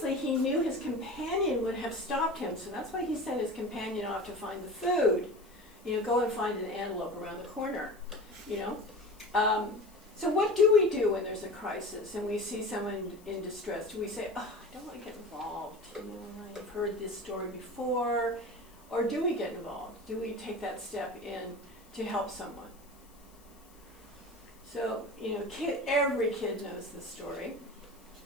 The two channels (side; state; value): left; noise; hiss, 27 dB below the sound